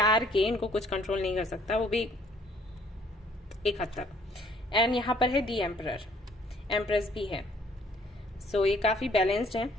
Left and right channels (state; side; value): normal; both; correlation 0.62